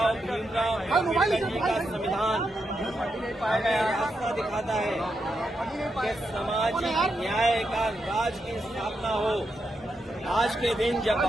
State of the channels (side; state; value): both; normal; correlation 0.84